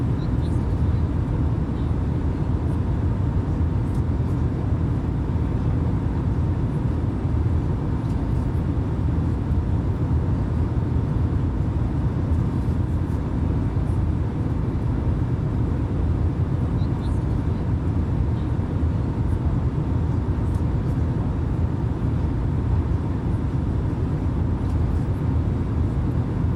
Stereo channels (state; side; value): identical; both; correlation 1.00